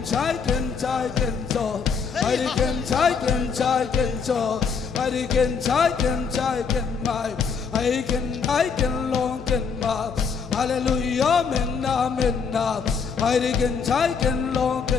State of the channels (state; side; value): quieter; right; 5.9 dB